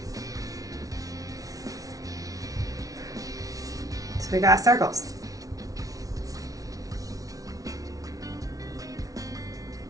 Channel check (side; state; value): left; late; 0.18 ms